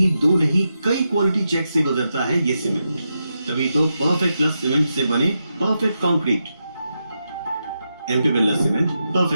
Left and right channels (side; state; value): both; inverted; correlation -0.87